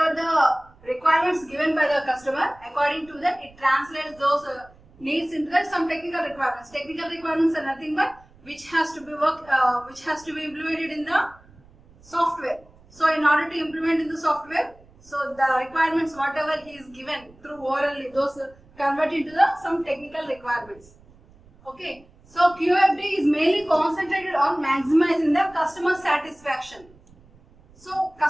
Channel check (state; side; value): noise; right; rumble, 26 dB below the sound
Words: the requirements given by the customer, according to that, it translates those needs into some technical requirements. Technical requirements are nothing but which has to be implemented in the software. So in order to implement in the software, so the requirements whatever he is given through orally, those convert into some technical requirements. Okay. So QFD is mainly concentrated on maximizing the customer satisfaction. So